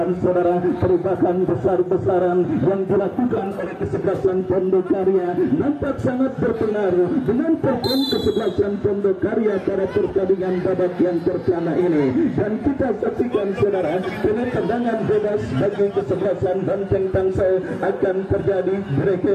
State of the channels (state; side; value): identical; both; correlation 1.00